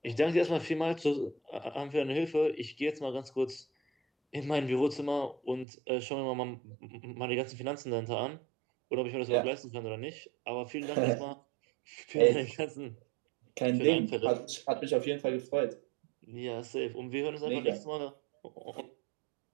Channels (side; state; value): left; drops out; at 5.7 s